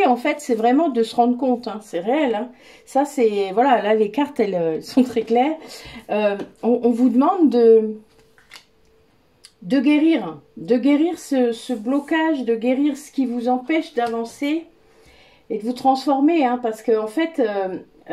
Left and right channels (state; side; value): identical; both; correlation 1.00